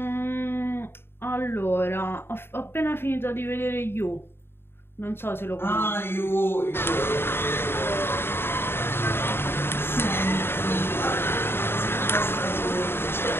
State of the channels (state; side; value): late; right; 0.11 ms